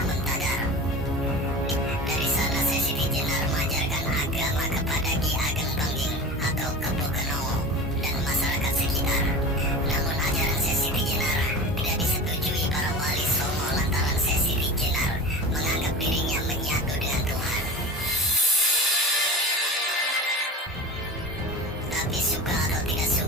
Muntagar. Dari sana Sesi Jenar mengajarkan agama kepada Ki Ageng Dongging atau Kepo Kenowo dan masyarakat sekitar. Namun ajaran Sesi Jenar tidak disetujui para wali Songo lantaran Sesi Jenar menganggap dirinya menyatu dengan Tuhan. Tapi suka atau tidak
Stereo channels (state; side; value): normal; both; correlation 0.32